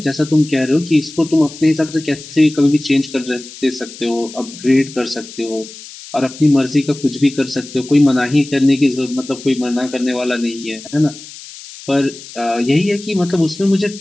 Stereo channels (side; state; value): left; noise; hiss, 16 dB below the sound